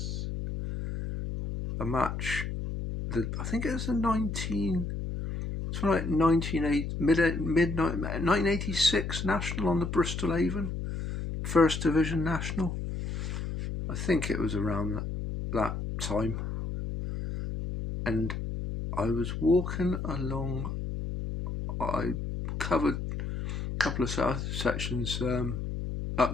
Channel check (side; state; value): left; noise; hum, 4 dB below the sound